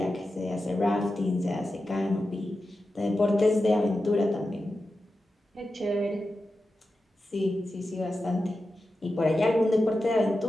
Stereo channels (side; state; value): both; normal; correlation 0.92